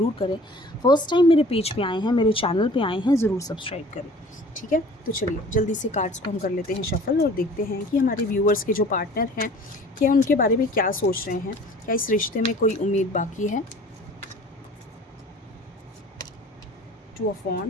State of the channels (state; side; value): normal; both; correlation 0.47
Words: करें। फर्स्ट टाइम मेरे पेज पे आए हैं, मेरे चैनल पे आए हैं, ज़रूर सब्सक्राइब करें। ठीक है, तो चलिए जल्दी से कार्ड्स को हम कर लेते हैं शफल और देखते हैं कि हमारे व्यूअर्स के जो पार्टनर हैं क्या उनके बारे में क्या सोच रहे हैं, क्या इस रिश्ते में कोई उम्मीद बाकी है। Two of